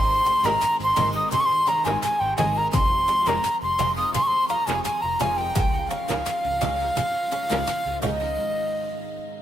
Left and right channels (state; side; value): normal; both; correlation 0.85